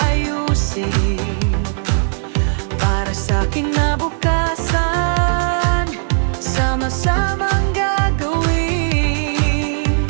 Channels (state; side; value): silent; left; digital silence